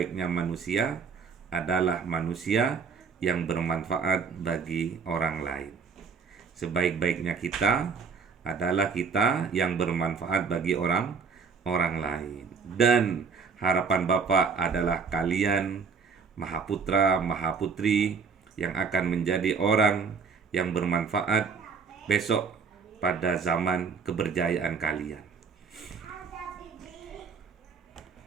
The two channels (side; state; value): left; quieter; 5.6 dB